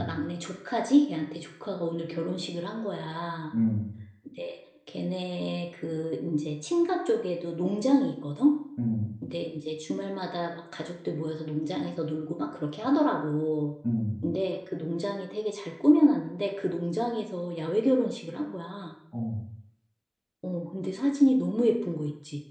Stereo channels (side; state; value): both; identical; correlation 1.00